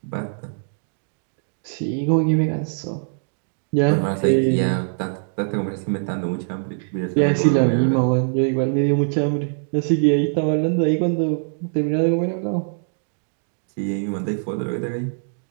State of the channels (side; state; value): left; silent; digital silence